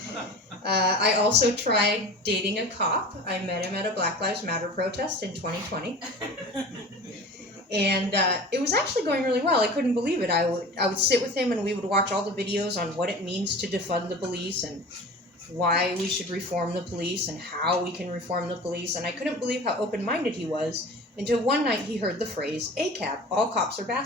I also tried dating a cop. I met him at a Black Lives Matter protest in 2020. And it was actually going really well. I couldn't believe it. I would sit with him and we would watch all the videos on what it means to defund the police and why we should reform the police and how we can reform the police. And I couldn't believe how open-minded he was until one night he heard the phrase, ACAB, all cops are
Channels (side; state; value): both; normal; correlation 0.37